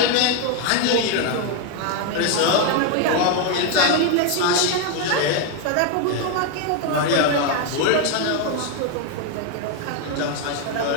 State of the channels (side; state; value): both; different; correlation 0.01